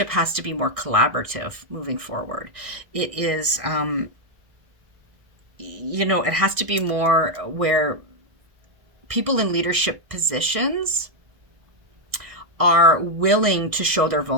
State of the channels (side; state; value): left; late; 1.6 ms